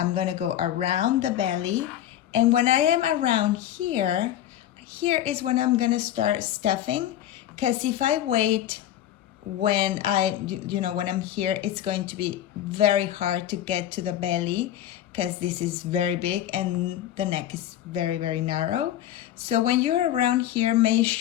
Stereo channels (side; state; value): right; quieter; 12.0 dB